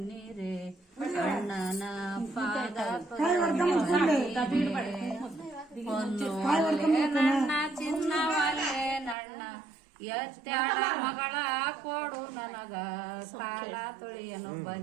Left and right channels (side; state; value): left; drops out; at 9.2 s